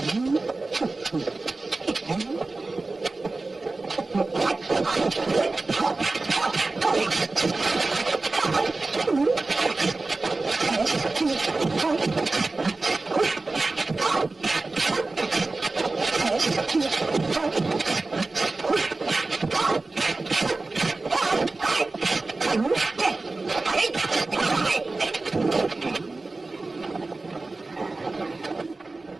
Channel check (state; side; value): quieter; left; 3.4 dB